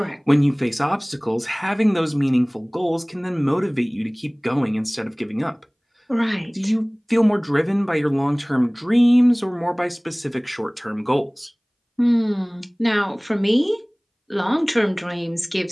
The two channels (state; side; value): identical; both; correlation 1.00